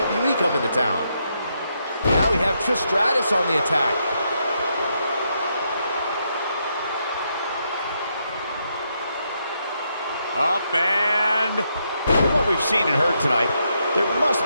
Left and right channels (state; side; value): inverted; both; correlation -0.79